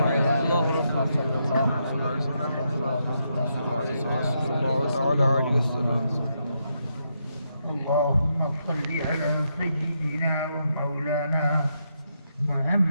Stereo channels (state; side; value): inverted; both; correlation -0.80